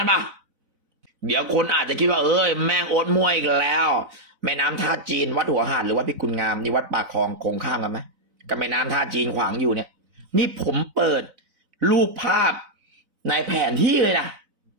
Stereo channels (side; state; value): left; late; 4.0 ms